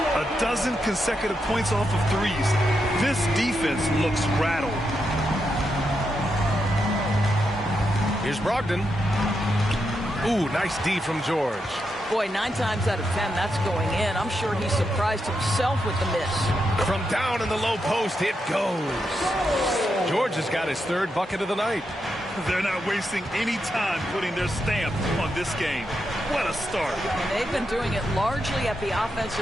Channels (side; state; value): both; normal; correlation 0.84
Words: A dozen consecutive points off of threes. This defense looks rattled. Here's Brogdon. Ooh, nice D from George. Boy, 9 times out of 10, that's going in. I'm sure he surprised himself with the miss. From down in the low post, it goes. George has got his 3rd bucket of the night. They're not wasting any time putting their stamp on this game. What a start. And they've been doing it largely at the